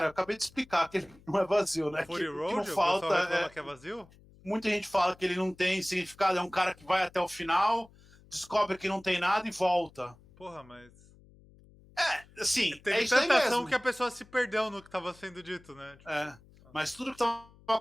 eu acabei de explicar que ele não é vazio, né? Fury Que não Road, o pessoal falta. reclama que é vazio? Muita gente fala que ele não tem significado, é um cara que vai até o final, descobre que não tem nada e volta. Porra, mas. Assim, é Teve isso aí tanta ação mesmo. que a pessoa se perdeu no que tava sendo dito, né? Tipo, É. Mas tudo que estava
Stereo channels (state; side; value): noise; left; hum, 26 dB below the sound